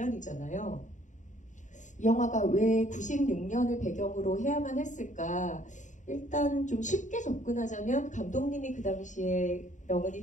이 영화가 왜 96년을 배경으로 해야만 했을까? 일단 좀 쉽게 접근하자면 감독님이 그 당시에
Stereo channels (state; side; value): late; right; 0.36 ms